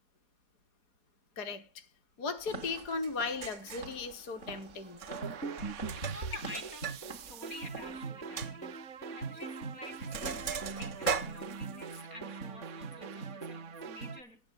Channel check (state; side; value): late; right; 4.2 ms